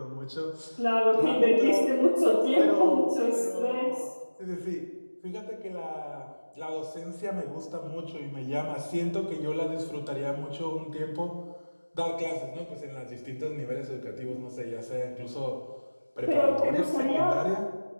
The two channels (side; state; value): both; inverted; correlation -1.00